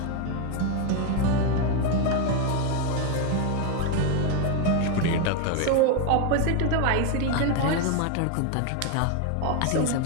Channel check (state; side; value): different; both; correlation 0.01